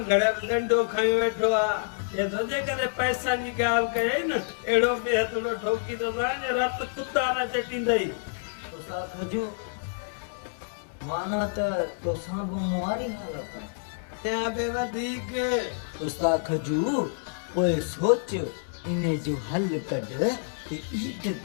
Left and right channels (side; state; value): right; silent; digital silence